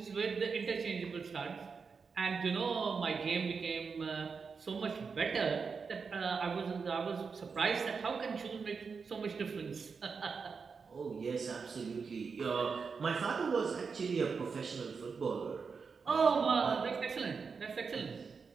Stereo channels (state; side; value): quieter; left; 5.3 dB